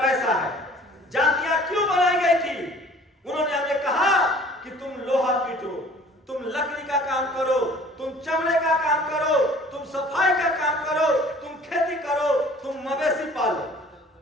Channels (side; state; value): both; normal; correlation 0.50